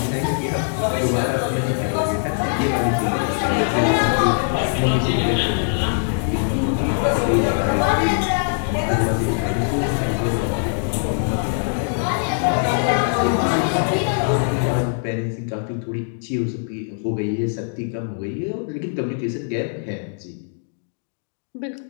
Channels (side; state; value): right; silent; digital silence